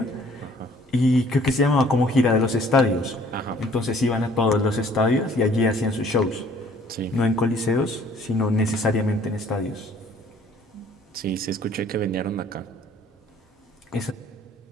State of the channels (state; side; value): normal; both; correlation 0.57